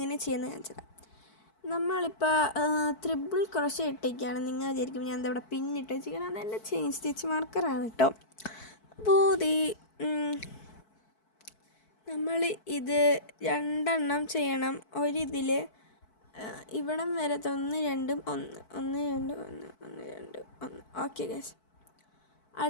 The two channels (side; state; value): right; late; 4.6 ms